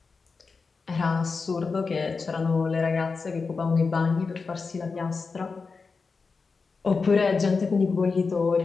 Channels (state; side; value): quieter; right; 4.6 dB